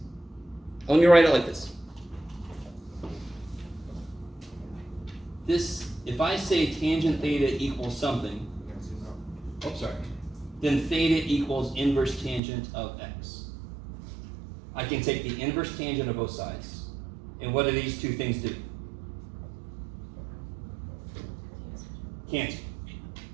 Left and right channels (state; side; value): drops out; left; at 12.4 s